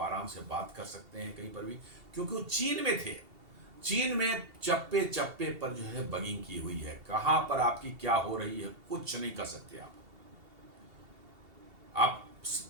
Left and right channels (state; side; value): late; left; 2.8 ms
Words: से बात कर सकते हैं कहीं पर भी, क्योंकि वो चीन में थे। चीन में चप्पे चप्पे पर जो है बगिंग की हुई है, कहां पर आपकी क्या हो रही है कुछ नहीं कर सकते आप